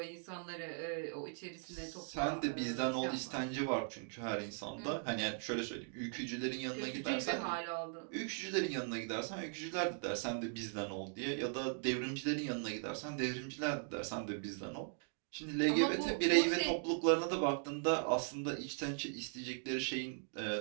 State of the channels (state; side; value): silent; left; 52 dB below the other